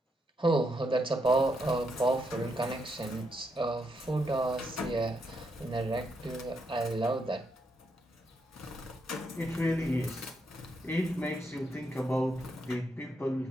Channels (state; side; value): normal; both; correlation 0.79